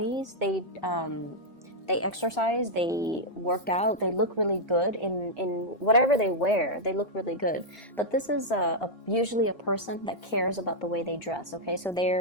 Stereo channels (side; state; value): right; late; 1.4 ms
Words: They exercise, they work out, they look really good in whatever they wear. They look really good. But this is usually a person that cares about the way they dress, okay? So